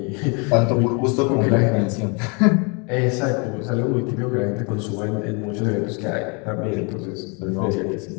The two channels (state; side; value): quieter; right; 33.1 dB